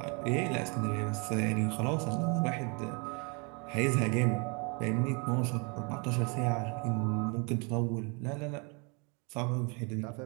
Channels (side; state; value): left; quieter; 33.3 dB